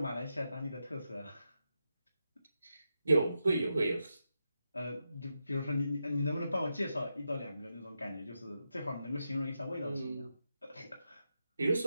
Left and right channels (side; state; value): both; inverted; correlation -0.86